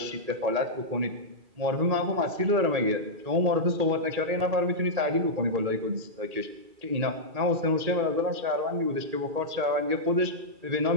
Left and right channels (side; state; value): left; late; 2.4 ms